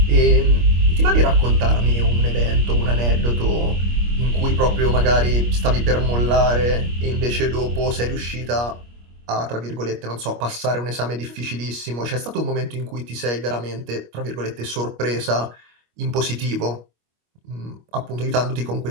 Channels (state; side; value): late; left; 25 ms